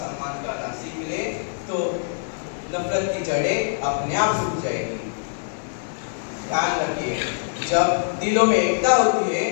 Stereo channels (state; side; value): silent; right; 63 dB below the other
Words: करना सीख ले तो नफरत की जड़ें अपने आप सूख जाएगी। ध्यान रखिए, जब दिलों में एकता होती है